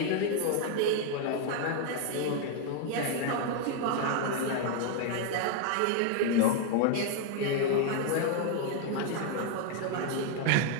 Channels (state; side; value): different; both; correlation 0.00